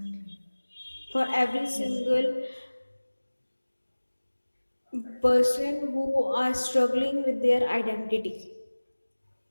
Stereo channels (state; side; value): inverted; both; correlation -1.00